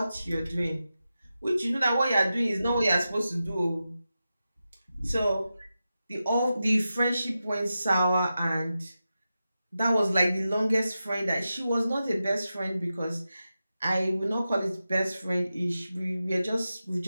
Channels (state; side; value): inverted; both; correlation -0.91